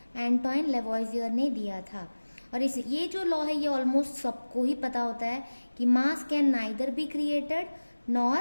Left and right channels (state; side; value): inverted; both; correlation -1.00